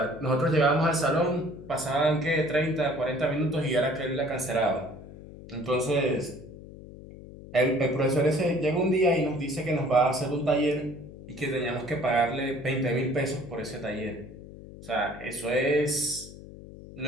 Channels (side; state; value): left; noise; hum, 16 dB below the sound